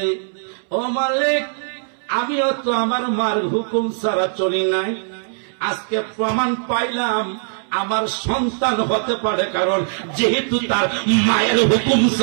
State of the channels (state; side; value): silent; left; 66 dB below the other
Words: ও মালিক, আমিও তো আমার মার হুকুম ছাড়া চলি নাই, আজকে প্রমাণ পাইলাম আমার সন্তান হতে পারে, কারণ যেহেতু তার মায়ের হুকুম